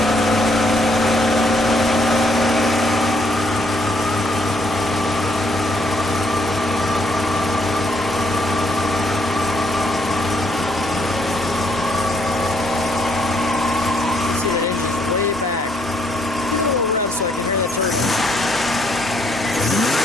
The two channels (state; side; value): normal; both; correlation 0.70